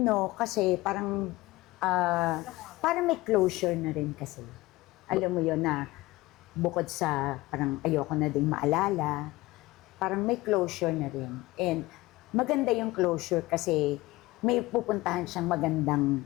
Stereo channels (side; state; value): right; quieter; 19.5 dB